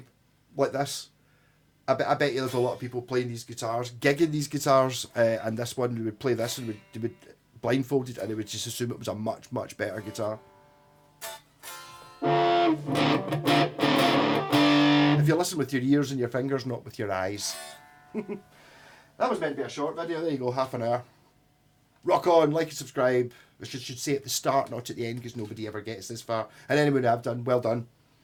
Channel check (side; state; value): both; identical; correlation 1.00